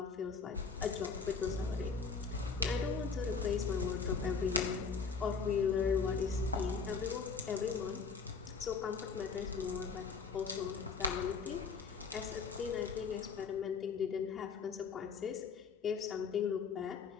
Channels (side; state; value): right; quieter; 5.3 dB